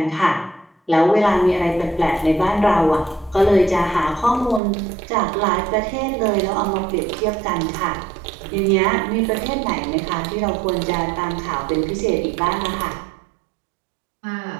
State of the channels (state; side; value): drops out; left; at 4.6 s